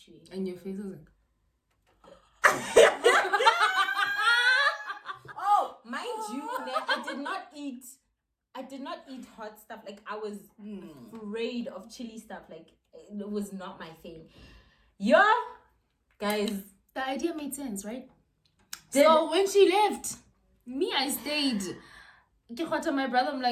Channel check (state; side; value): identical; both; correlation 1.00